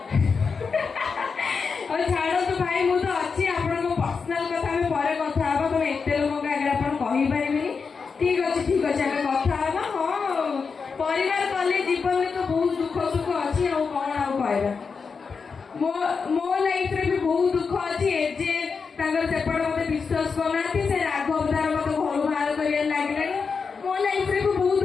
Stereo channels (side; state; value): right; quieter; 5.3 dB